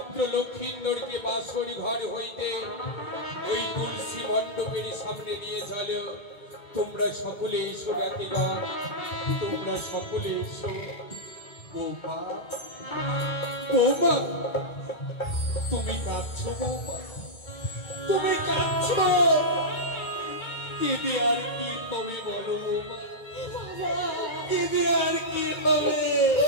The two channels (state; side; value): late; right; 2.2 ms